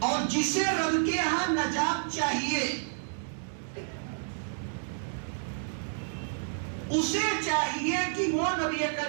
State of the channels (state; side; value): silent; left; digital silence